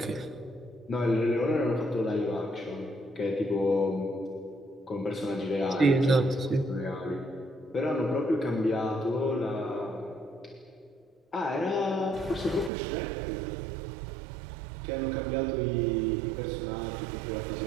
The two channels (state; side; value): drops out; left; at 12.7 s